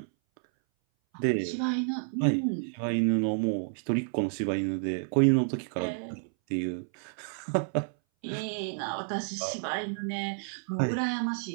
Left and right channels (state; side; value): silent; left; 58 dB below the other